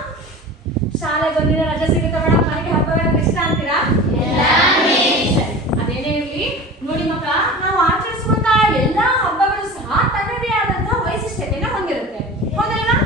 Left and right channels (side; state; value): both; normal; correlation 0.35